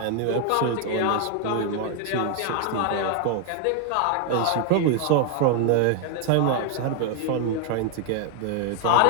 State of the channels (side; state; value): both; different; correlation 0.00